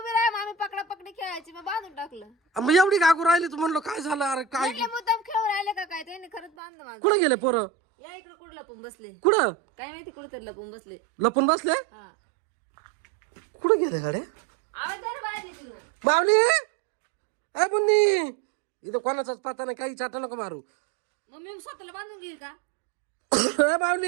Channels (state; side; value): drops out; left; at 6.5 s